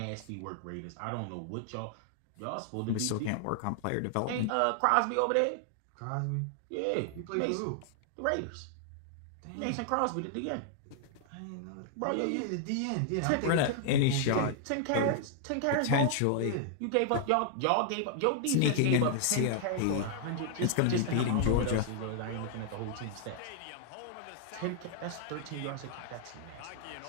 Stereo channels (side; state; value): both; different; correlation 0.00